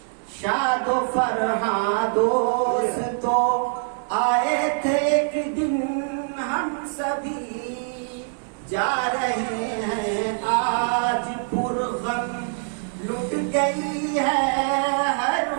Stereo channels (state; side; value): silent; left; digital silence